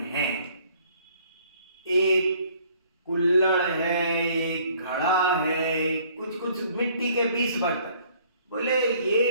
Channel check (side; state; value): both; inverted; correlation -0.59